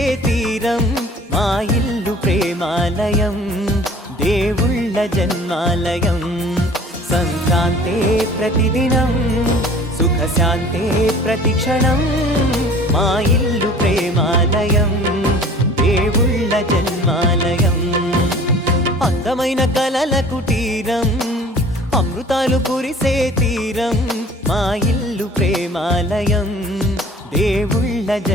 తీరం, మా ఇల్లు ప్రేమాలయం, దేవుళ్ళ జన్మాలయం. సంక్రాంతే ప్రతిదినం, సుఖశాంతే ప్రతిక్షణం, మా ఇల్లు ప్రేమాలయం, దేవుళ్ళ జన్మాలయం. అందమైన కలల కుటీరం, అమృతాలు కురిసే తీరం, మా ఇల్లు ప్రేమాలయం, దేవుళ్ళ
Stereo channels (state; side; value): normal; both; correlation 0.47